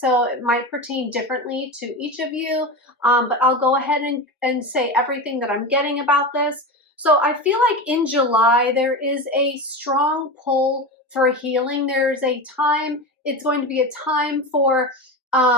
it might pertain differently to each of you. But I'll go ahead and say everything that I'm getting about this. So I feel like in July there is a strong pull for healing. There's a time. It's going to be a time for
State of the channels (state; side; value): normal; both; correlation 0.23